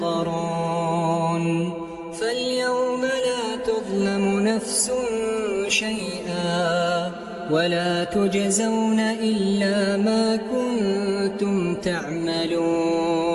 فاليوم لا تظلم نفس شيئا ولا تجزون إلا ما كنتم تعملون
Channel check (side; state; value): both; identical; correlation 1.00